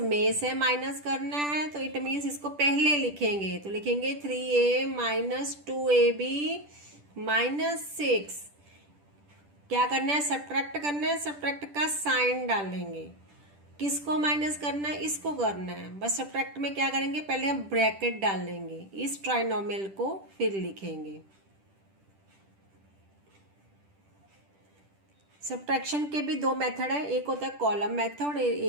से माइनस करना है, तो इट मीन्स इसको पहले लिखेंगे। तो लिखेंगे 3a - 2ab - 6। क्या करना है सब्ट्रैक्ट करना है, सब्ट्रैक्ट का साइन डालेंगे। किसको माइनस करना है, इसको करना है। बस सब्ट्रैक्ट में क्या करेंगे, पहले हम ब्रैकेट डालेंगे, इस ट्राइनोमियल को फिर लिखेंगे। सब्ट्रैक्शन के भी दो मेथड है, एक होता है कॉलम मेथड,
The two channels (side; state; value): left; late; 10 ms